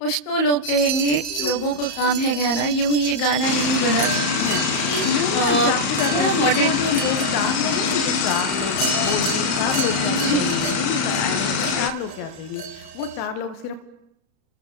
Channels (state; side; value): late; right; 34 ms